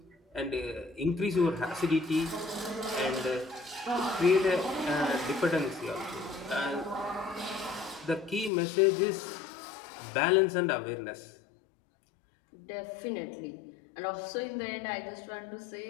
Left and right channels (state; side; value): drops out; right; at 8.5 s